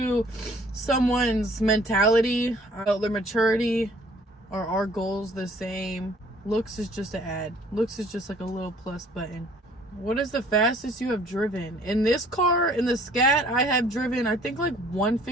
someone's mentality, their maturity. Are our goals the same? Looks is just an ad. Looks is just like a little plus button. What is the fastest you have driven? In this car, in the Scat, I have driven, I think like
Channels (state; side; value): normal; both; correlation 0.56